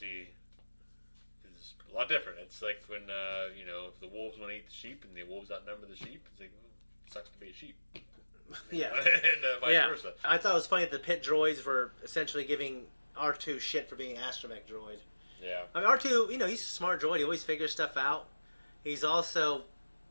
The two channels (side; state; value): both; inverted; correlation -1.00